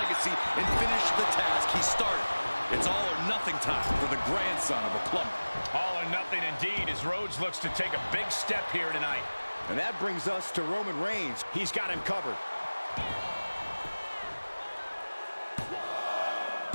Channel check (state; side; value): inverted; both; correlation -1.00